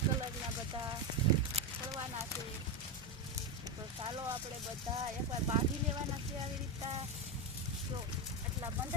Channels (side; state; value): both; normal; correlation 0.10